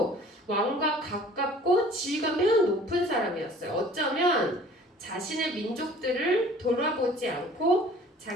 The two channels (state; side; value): normal; both; correlation 0.50